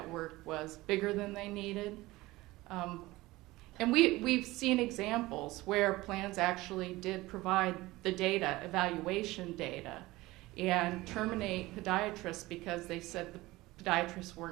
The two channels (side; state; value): left; quieter; 19.3 dB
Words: was bigger than they needed. And we've seen examples where plans actually did provide the data, evaluation data, and terminate podiatrists because they said the podiatrists